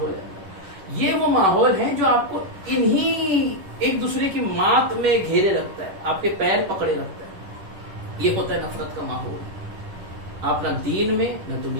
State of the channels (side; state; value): left; late; 10 ms